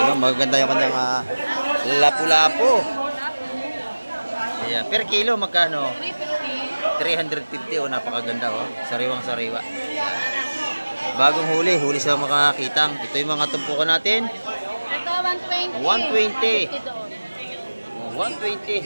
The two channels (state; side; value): inverted; both; correlation -1.00